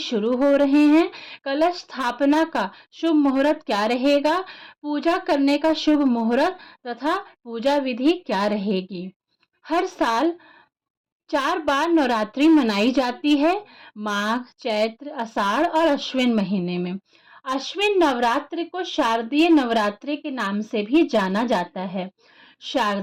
हो रहे हैं, कलश स्थापना का शुभ मुहूर्त क्या रहेगा, पूजा करने का शुभ मुहूर्त तथा पूजा विधि क्या रहेगी। हर साल 4 बार नवरात्रि मनाई जाती है, माघ, चैत्र, आषाढ़ और अश्विन महीने में। अश्विन नवरात्रि को शारदीय नवरात्रि के नाम से भी जाना जाता है।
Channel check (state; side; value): identical; both; correlation 1.00